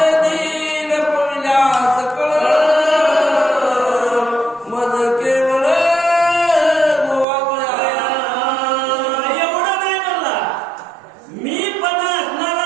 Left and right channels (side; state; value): left; drops out; at 7.2 s